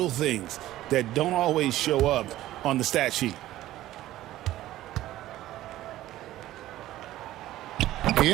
things that don't always show up on the stat sheet. He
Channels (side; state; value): left; quieter; 14.8 dB